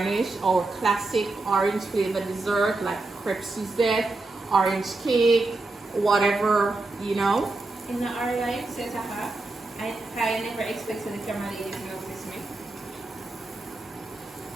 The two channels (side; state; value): left; quieter; 3.2 dB